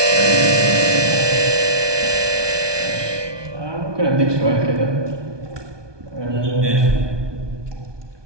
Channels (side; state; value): left; late; 1.2 ms